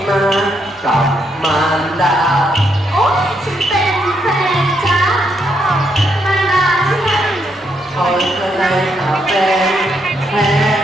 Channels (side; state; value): both; normal; correlation 0.77